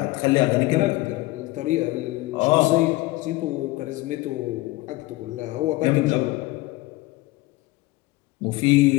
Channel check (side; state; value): right; quieter; 20.0 dB